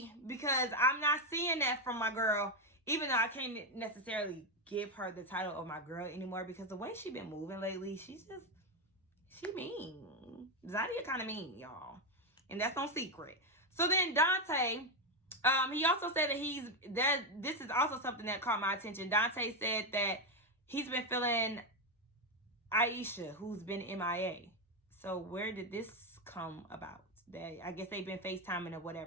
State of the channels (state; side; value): normal; both; correlation 0.08